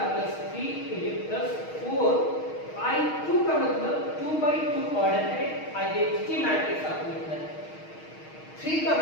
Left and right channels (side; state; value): right; late; 6.4 ms